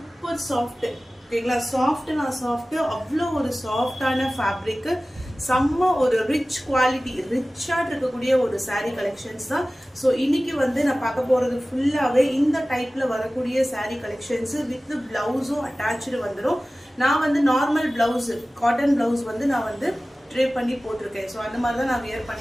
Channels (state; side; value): normal; both; correlation 0.97